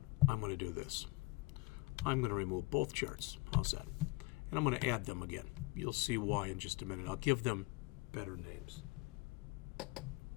I'm going to do this. I'm going to remove both charts. How's that? And I'm going to add them again. You'll see why in just a minute. I'll give them better names.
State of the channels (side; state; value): right; quieter; 23.0 dB